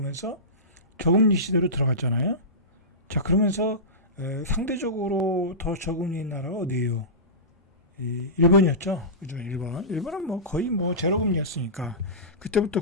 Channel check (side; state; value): both; normal; correlation -0.20